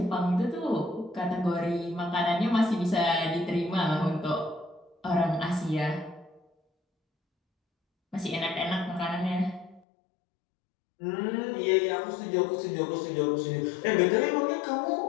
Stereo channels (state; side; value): drops out; right; at 9.8 s